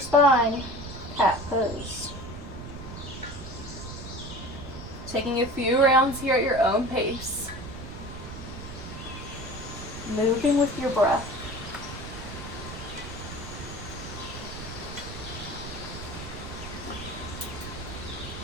cat pose. Taking a few rounds here at your own pace. Moving with your breath.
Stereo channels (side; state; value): right; noise; rumble, 10 dB below the sound